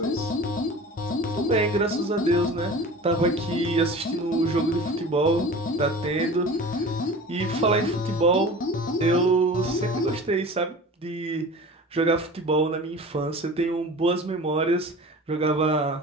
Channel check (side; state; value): both; normal; correlation 0.38